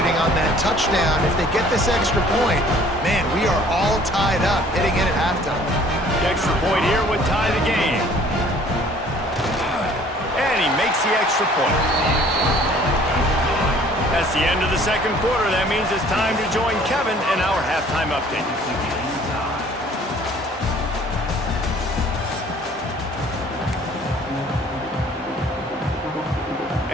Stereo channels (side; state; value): both; normal; correlation 0.54